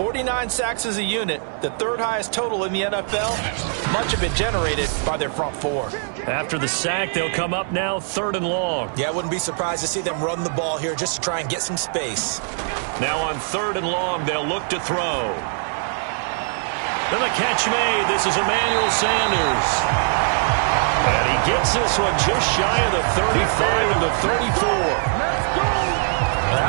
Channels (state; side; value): silent; left; 63 dB below the other